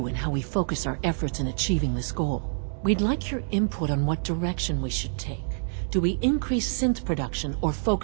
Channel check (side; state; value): left; silent; digital silence